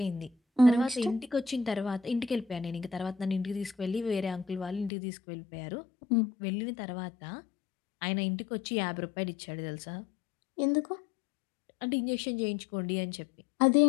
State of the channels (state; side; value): drops out; right; at 4.9 s